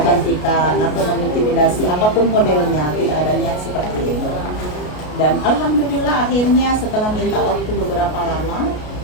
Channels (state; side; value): late; right; 33 ms